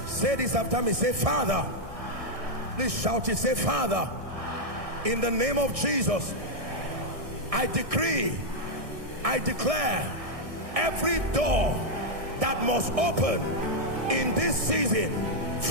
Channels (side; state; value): left; late; 1.6 ms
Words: Say this after me. Say, Father. Please shout it. Say, Father, in the name of Jesus, I decree, I declare, every door that must open in this season